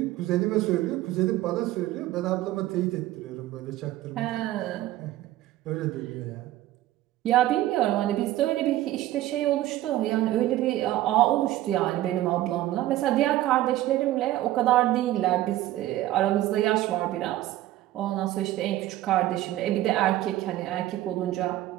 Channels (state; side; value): quieter; left; 15.0 dB